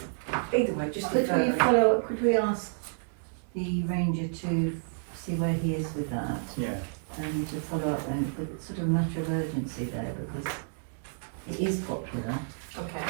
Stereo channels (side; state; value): left; silent; digital silence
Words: Either way, just Could defer we it. follow, could we ask the ranger to see where he is with that Yeah. and to follow up and with sort of a matter of urgency there because it is popular Okay,